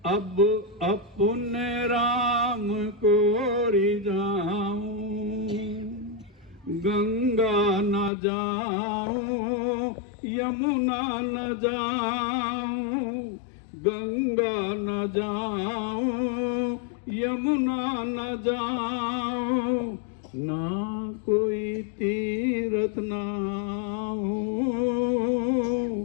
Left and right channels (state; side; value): drops out; right; at 8.1 s